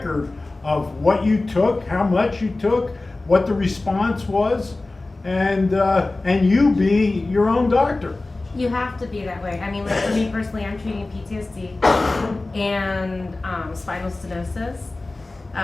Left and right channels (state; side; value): quieter; right; 3.1 dB